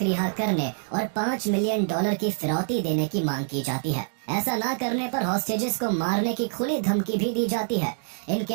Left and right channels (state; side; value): silent; left; digital silence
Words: रिहा करने और $5 मिलियन की फिरौती देने की मांग की जाती है। ऐसा ना करने पर हॉस्टेजेस को मारने की खुली धमकी भी दी जाती है। इन